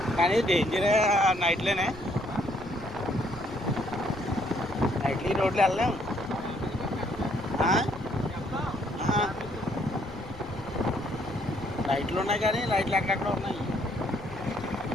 కానీ డేంజరే నైట్లోనే. నైట్లో ఈ రోడ్లు వెళ్ళలేము. లైట్లు ఉన్నాయి కానీ లైట్లు ఎక్కడెక్కడ ఉన్నాయి.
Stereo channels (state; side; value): noise; left; rumble, 19 dB below the sound